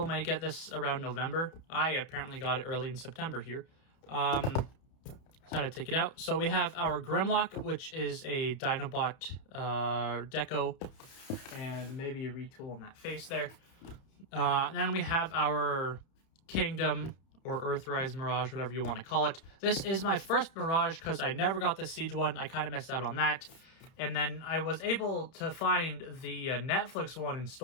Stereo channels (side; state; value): right; late; 31 ms